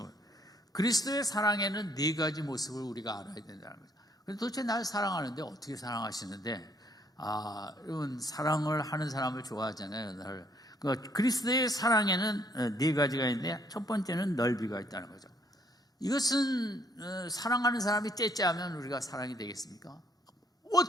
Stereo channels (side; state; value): both; normal; correlation 0.66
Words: 그리스도의 사랑에는 네 가지 모습을 우리가 알아야 된다는 거죠. 그런데 도대체 나를 사랑하는데 어떻게 사랑하시는데? 여러분 사랑을 하는 사람을 좋아하잖아요. 그리스도의 사랑에는 네 가지가 있는데, 첫 번째는 넓이가 있다는 거죠. 이것은 사랑하는 사람이 째째하면 우리가 사랑이 되겠습니까?